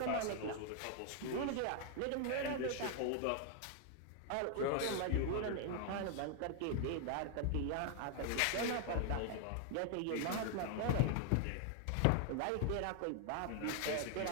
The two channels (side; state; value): both; different; correlation 0.00